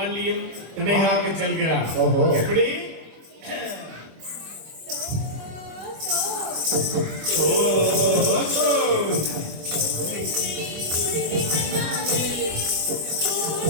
திணை காக்க செல்கிறார். ஓஹோ. எப்படி?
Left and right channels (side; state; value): left; late; 25 ms